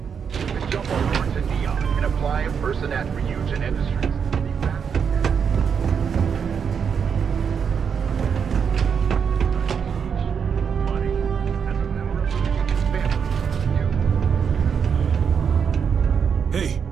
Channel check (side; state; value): left; quieter; 6.9 dB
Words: Jump over to Neon and apply in person at Ryujin Industries. Hey,